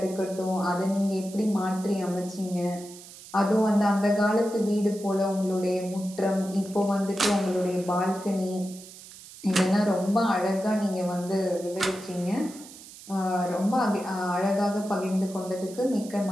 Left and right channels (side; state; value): right; noise; hiss, 17 dB below the sound